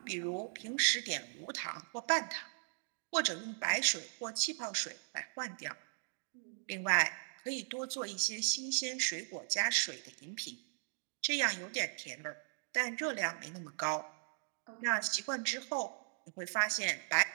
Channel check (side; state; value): left; silent; digital silence